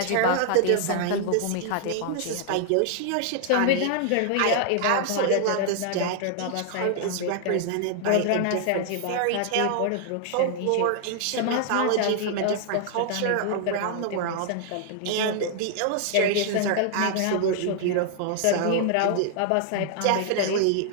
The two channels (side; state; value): both; different; correlation -0.01